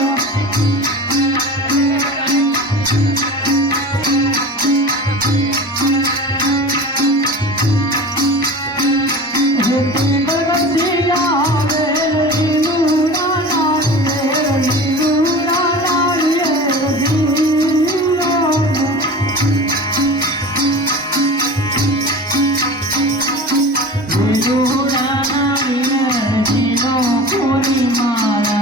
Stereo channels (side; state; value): both; normal; correlation 0.34